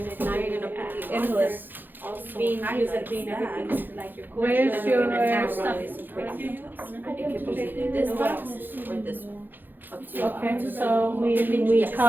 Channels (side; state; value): left; late; 0.090 ms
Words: Now you're gonna put in list. also Being used highlight as being that. everything, like your Where's culture. your Stuff is important to us. It could be either this box or this one. Up to you. Okay, so we